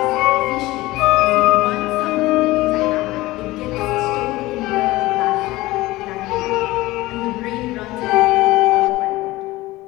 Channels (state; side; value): quieter; right; 18.9 dB